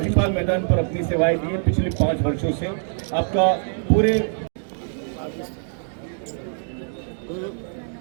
मैदान पर अपनी सेवाएं दी है पिछले 5 वर्षों से। आपका पूरे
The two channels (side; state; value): left; silent; digital silence